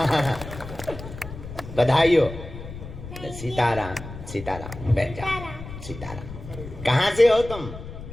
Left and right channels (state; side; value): noise; left; rumble, 12 dB below the sound